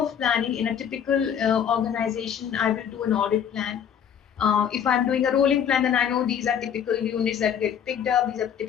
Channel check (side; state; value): right; quieter; 8.4 dB